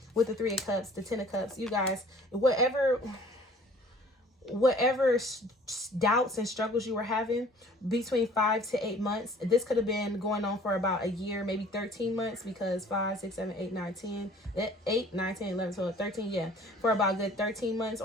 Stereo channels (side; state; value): both; normal; correlation 0.52